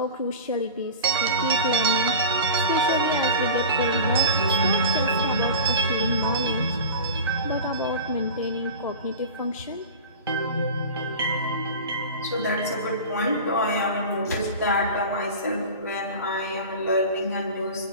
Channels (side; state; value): both; inverted; correlation -0.33